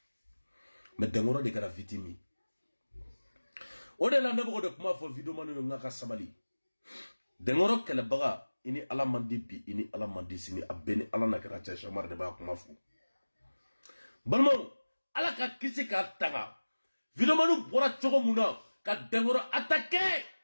me dengoro de kara vitimi o de la ne bo de kuma fo video manu ngaka sabali dengoro kele baga ini ala mandi bi ini ala mandi sini abeni ala na kara cha shamar de ba kuma fu balmo ala ka kisi ka tanga video manu bora chogo muna ka dengoro attaquer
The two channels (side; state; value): both; inverted; correlation -1.00